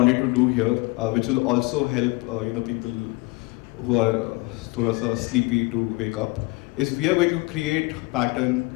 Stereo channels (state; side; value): quieter; right; 25.1 dB